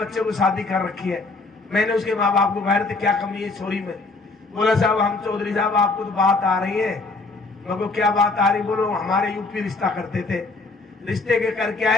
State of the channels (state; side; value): quieter; right; 3.6 dB